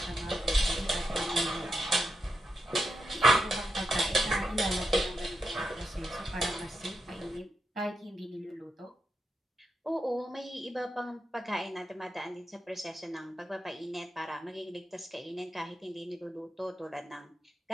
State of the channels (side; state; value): both; normal; correlation 0.86